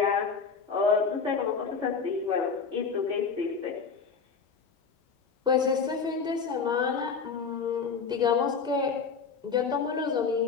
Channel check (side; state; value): right; quieter; 5.5 dB